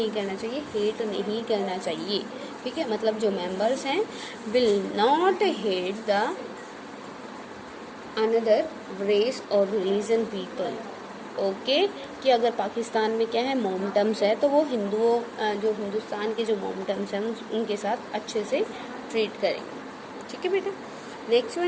करना चाहिए, हेट नहीं करना चाहिए. ठीक है, मतलब जो मेंबर्स हैं will not hate the another race और रिलीजन पीपल. ओके. कि अगर पाकिस्तान में क्या है, मोमटम्स है, तो वो हिंदुओं, जो हिंदुस्तान के जो मोमटम्स हैं उनके साथ अच्छे से ट्रीट करेंगे. ठीक है बेटा. Next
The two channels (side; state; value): both; identical; correlation 1.00